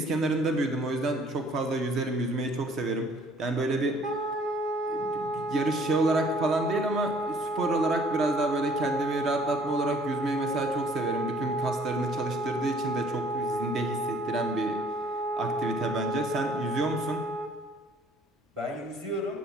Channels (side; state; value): both; normal; correlation 0.58